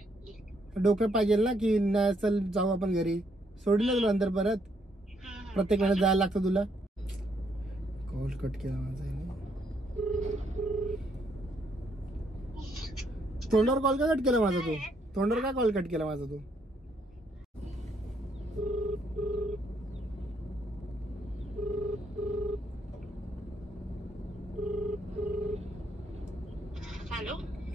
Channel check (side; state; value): both; normal; correlation 0.72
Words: डोकं पाहिजे ना की नाही चल जाऊ आपण घरी. सोडून ना तुला नंतर परत प्रत्येक वेळेस जायला लागतं तुला. कॉल कट केला माझा. तोंडावर कॉल का कट केला माझा तू? तोंडावर का कॉल कट केला माझा तू? Hello